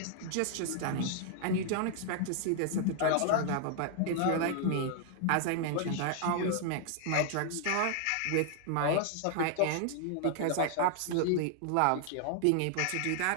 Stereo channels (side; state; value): both; different; correlation 0.00